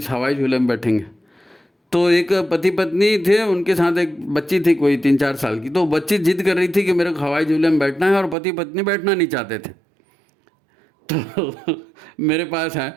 हवाई झूले में बैठेंगे। तो एक पति पत्नी थे, उनके साथ एक बच्ची थी कोई 3-4 साल की। तो बच्ची जिद कर रही थी कि मेरे को हवाई झूले में बैठना है, और पति पत्नी बैठना नहीं चाहते थे। तो मेरे पास है,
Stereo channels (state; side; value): drops out; left; at 8.3 s